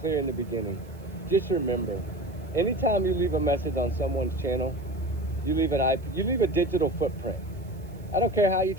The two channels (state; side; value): noise; right; hiss, 29 dB below the sound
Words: in the beginning. Just remember, anytime you leave a message on someone's channel, you leave a digital footprint. I don't care how you